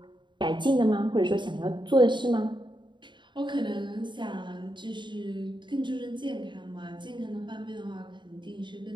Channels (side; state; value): left; late; 0.23 ms